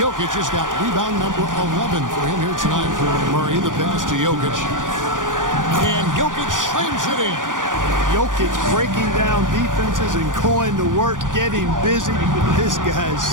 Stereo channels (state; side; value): late; left; 0.88 ms